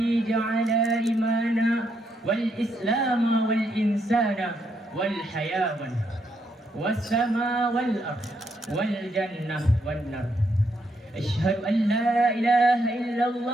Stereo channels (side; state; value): both; normal; correlation 0.77